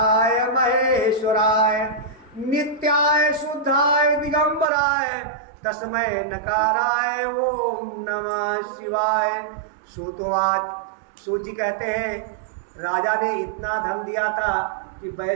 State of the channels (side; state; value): left; drops out; at 4.7 s